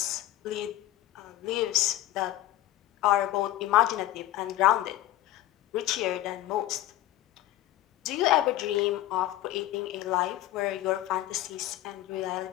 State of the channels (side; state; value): right; quieter; 14.6 dB